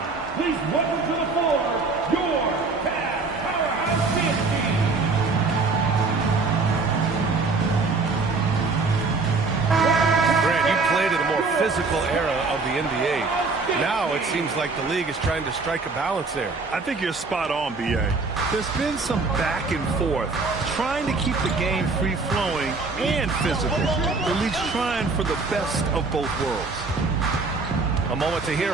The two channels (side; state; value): left; quieter; 4.0 dB